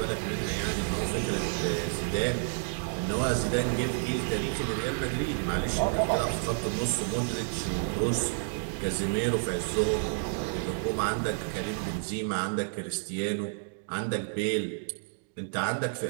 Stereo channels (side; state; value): left; silent; digital silence